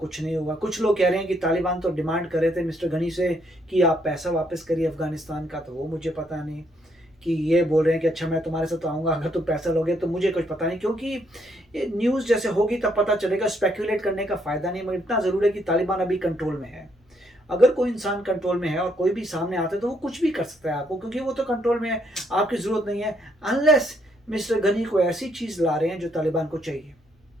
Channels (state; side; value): normal; both; correlation 0.72